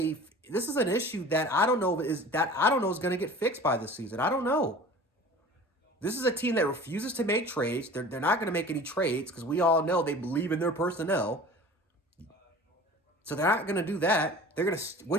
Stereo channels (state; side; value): normal; both; correlation 0.41